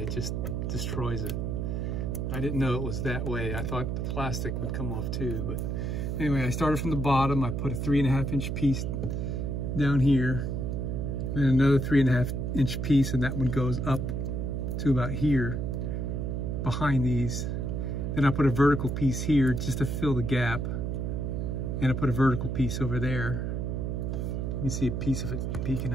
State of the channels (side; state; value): right; noise; hum, 1 dB below the sound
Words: just destroys it. I didn't know it was that way. I thought the plastic would come off too, but anyway, I started from the bottom. I put a 3.5 inch piece down here, and another 3.5 inch piece, and that one goes up to about here behind these. Then I put a vertical piece here just to fill the gap, and I put a vertical piece over there. You can see a piece of it peeking